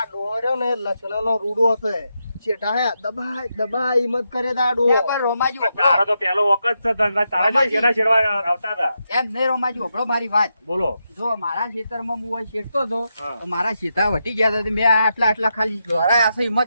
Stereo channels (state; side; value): inverted; both; correlation -0.85